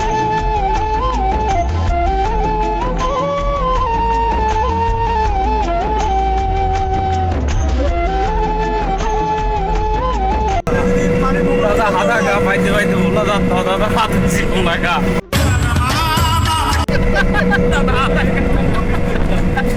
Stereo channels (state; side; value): identical; both; correlation 1.00